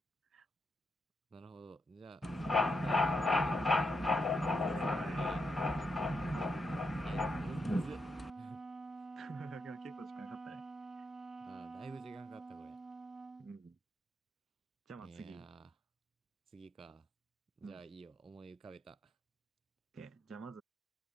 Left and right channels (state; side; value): normal; both; correlation 0.82